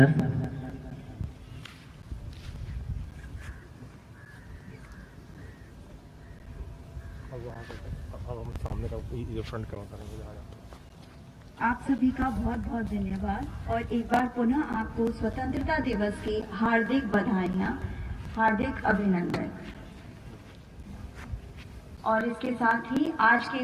आप सभी का बहुत बहुत धन्यवाद और एक बार पुनः आपको स्वतंत्रता दिवस की हार्दिक बधाइयाँ, हार्दिक अभिनंदन। और इसके साथ ही आज के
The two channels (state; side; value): identical; both; correlation 1.00